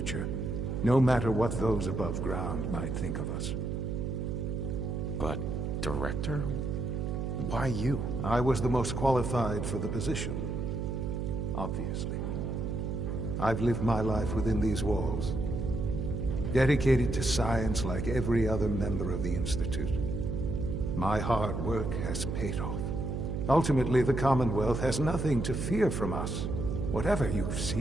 no matter what those above ground might think of us. But, Director? Why you? I was the most qualified for the position, obviously. I've lived my life within these walls, dedicated to science like every other member of the Institute. My hard work has paid off. Ultimately, the Commonwealth has nothing to fear from us. Whatever you've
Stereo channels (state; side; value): noise; right; hum, 2 dB below the sound